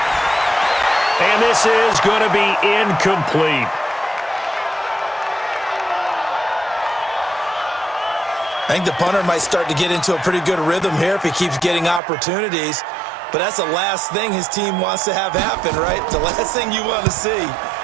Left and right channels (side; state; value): left; drops out; at 12.0 s